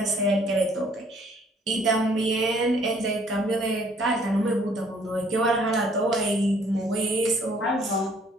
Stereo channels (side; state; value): both; normal; correlation 0.61